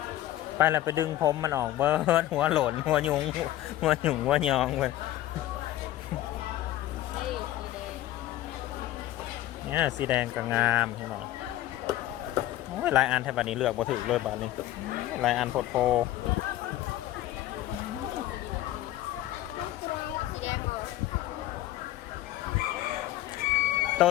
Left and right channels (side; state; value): right; quieter; 14.4 dB